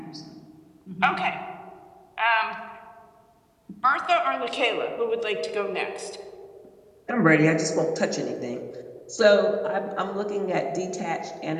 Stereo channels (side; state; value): both; identical; correlation 1.00